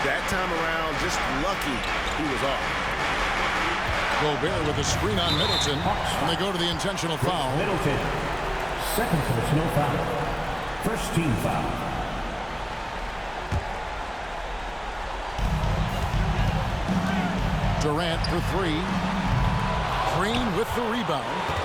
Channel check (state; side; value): identical; both; correlation 1.00